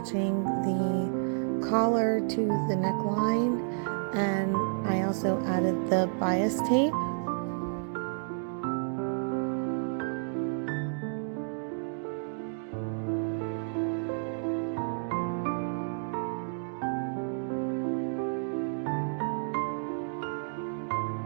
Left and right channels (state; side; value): silent; left; digital silence